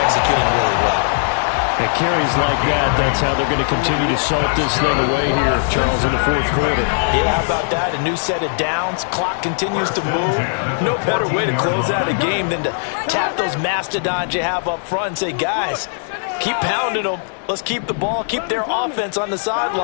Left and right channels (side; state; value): right; silent; digital silence